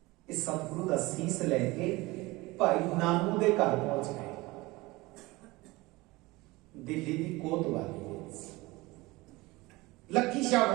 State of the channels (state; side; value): quieter; left; 21.6 dB